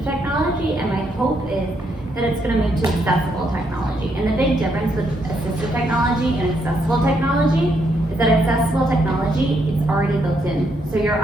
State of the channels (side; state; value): both; normal; correlation 0.76